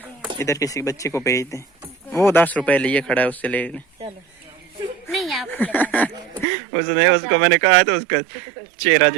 इधर किसी बच्चे को भेज दें। वो 10 रुपए लिए खड़ा है, उससे ले लें। चलो नहीं आपको लगा देंगे। उसने उसको मैंने कहा तो उसका चेहरा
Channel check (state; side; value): drops out; left; at 6.5 s